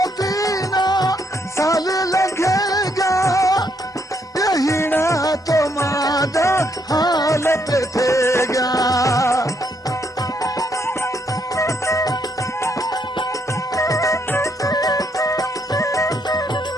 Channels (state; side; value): normal; both; correlation 0.74